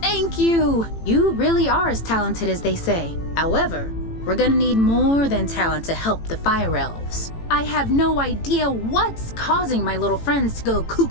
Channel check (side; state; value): right; late; 18 ms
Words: Thank you! You really are as talented as they say. However, we're gonna need more than talent to help the fire elves. I have no idea what's causing my little friends to go